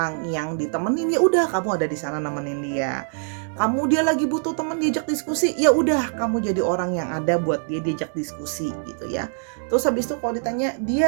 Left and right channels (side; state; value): left; silent; digital silence